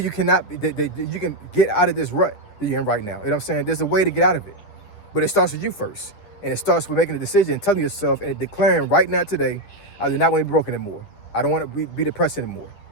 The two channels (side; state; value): right; late; 9.8 ms